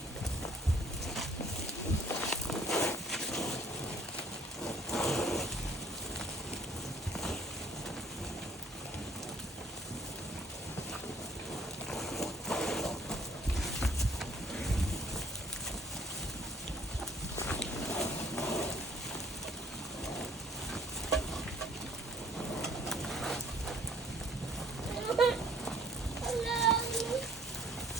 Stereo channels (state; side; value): normal; both; correlation 0.59